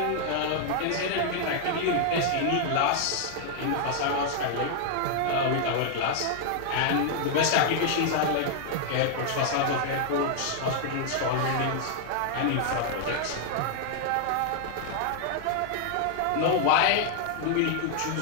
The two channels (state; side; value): different; both; correlation 0.00